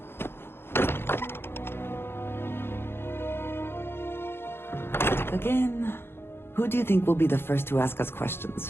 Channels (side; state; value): right; late; 0.11 ms